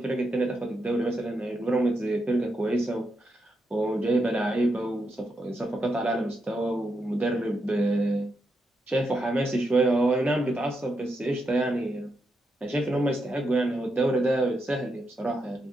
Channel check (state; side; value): normal; both; correlation 0.83